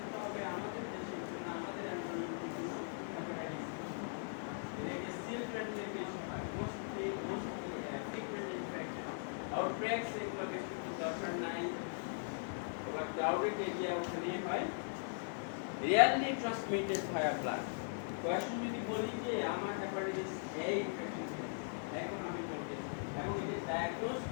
হবে আমাদের দেশে না আমাদের এনভায়রনমেন্টে হেপাটাইটিস, এটা চিলড্রেনদের বেশি হয়, mostly frequent infection crowded area ওখানে হয় rarely transmitted via blood. Question যদি বলি যে আমার হেপাটাইটিস A ইনফেকশন এখন আমি বলতে এবং এটা ডায়াগনোস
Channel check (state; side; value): silent; right; 51 dB below the other